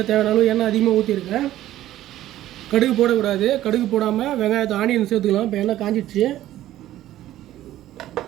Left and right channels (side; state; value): left; quieter; 13.8 dB